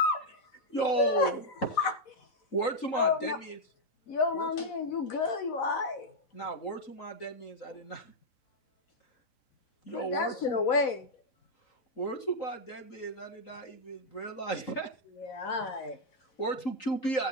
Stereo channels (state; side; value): late; right; 3.8 ms